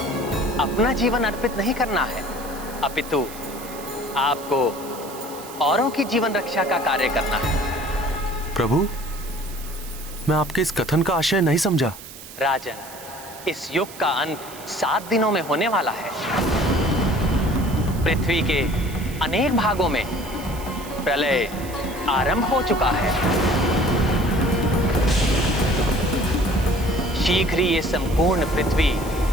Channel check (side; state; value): right; noise; hiss, 16 dB below the sound